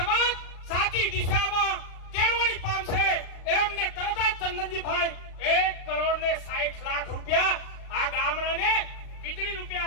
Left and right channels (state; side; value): late; right; 36 ms